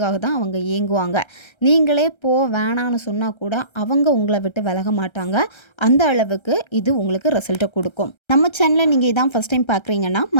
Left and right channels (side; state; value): right; late; 1.3 ms